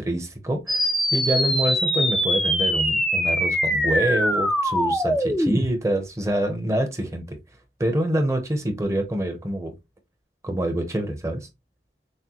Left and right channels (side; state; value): both; normal; correlation 0.81